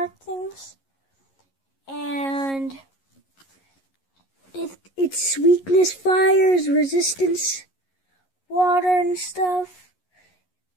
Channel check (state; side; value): late; right; 11 ms